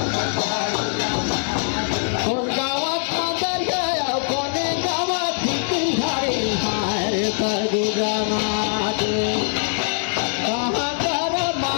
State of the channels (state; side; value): silent; right; 64 dB below the other